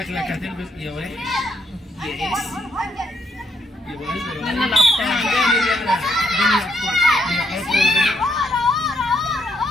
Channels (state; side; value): normal; both; correlation 0.74